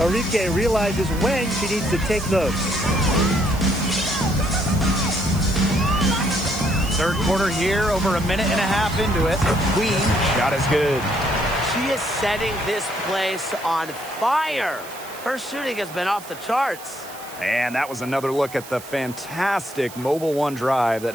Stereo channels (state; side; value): noise; right; hiss, 16 dB below the sound